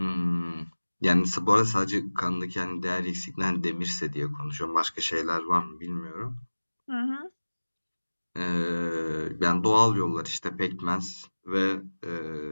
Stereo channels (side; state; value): both; inverted; correlation -1.00